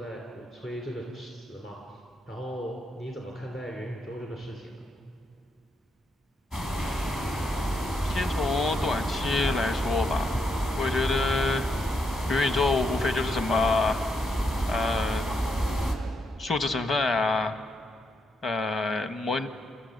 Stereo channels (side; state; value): both; normal; correlation 0.80